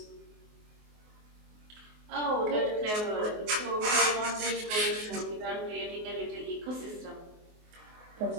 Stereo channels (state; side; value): late; left; 24 ms